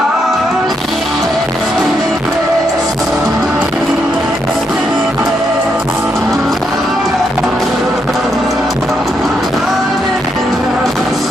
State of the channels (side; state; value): both; normal; correlation 0.79